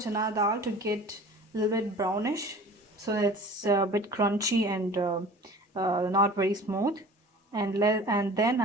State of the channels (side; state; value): both; normal; correlation 0.43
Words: dal to get a little bit brownish, so it's a bit crunchy and not very smooth. And then